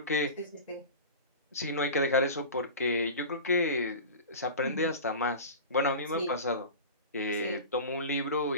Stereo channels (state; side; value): inverted; both; correlation -0.31